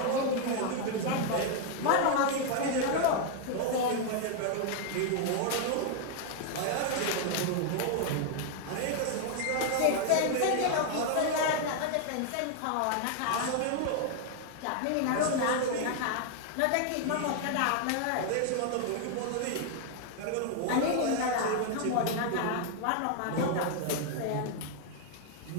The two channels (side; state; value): both; different; correlation 0.00